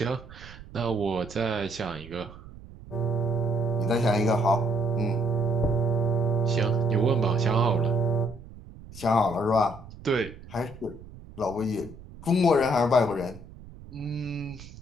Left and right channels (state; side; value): noise; right; rumble, 17 dB below the sound